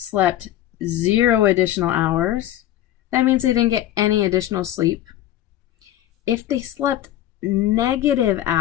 0 additional hours, that means they didn't get any additional sleep. If they slept negative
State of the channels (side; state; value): right; quieter; 13.1 dB